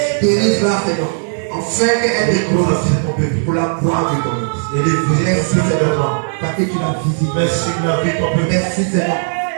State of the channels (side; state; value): left; silent; digital silence